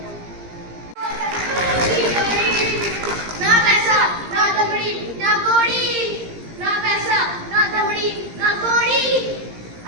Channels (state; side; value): late; left; 17 ms